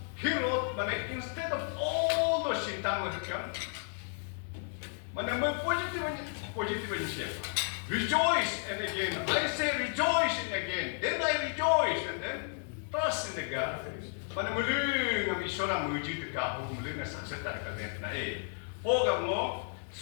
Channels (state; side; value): silent; right; 55 dB below the other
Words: he wrote mana instead of all those shintama to come. Mana move positive in shape. Rejoice and again. I say rejoice and again. Then I rejoice and then trust in the God. Mana muli ngam isora muji dekat muli ngam sukses dari kalian na mo